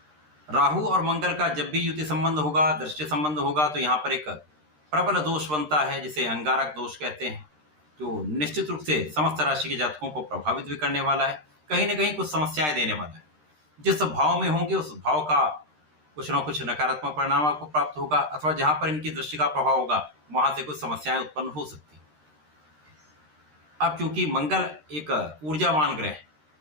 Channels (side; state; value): left; late; 13 ms